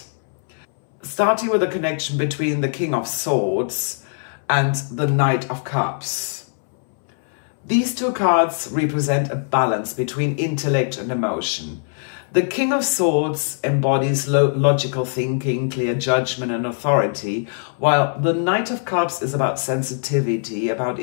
Starting with the connection between the King of Swords and the Knight of Cups. These two cards represent a balance between intellect and emotion. The King of Swords embodies logical thinking, clear judgment and authority, while the Knight of Cups is about sensitivity, about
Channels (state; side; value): silent; right; 65 dB below the other